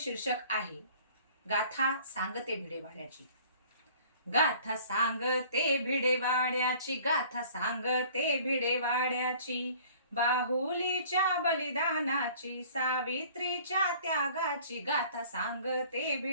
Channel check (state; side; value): inverted; both; correlation -0.51